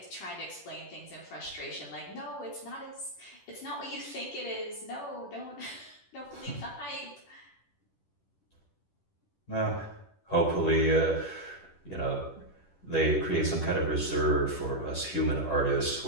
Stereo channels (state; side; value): late; right; 10 ms